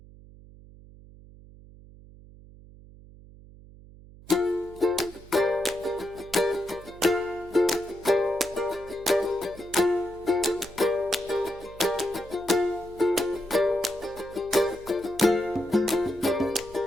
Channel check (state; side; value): noise; right; hum, 21 dB below the sound